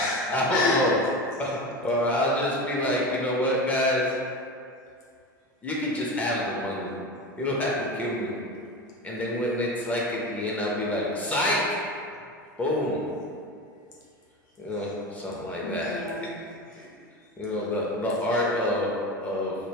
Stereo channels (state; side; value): normal; both; correlation 0.26